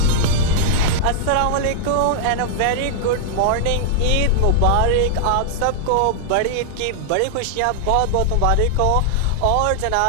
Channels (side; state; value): both; different; correlation -0.01